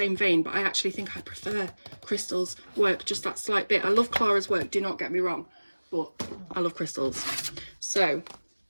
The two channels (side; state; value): both; inverted; correlation -1.00